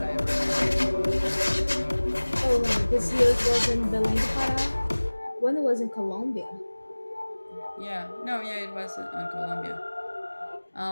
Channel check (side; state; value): both; inverted; correlation -1.00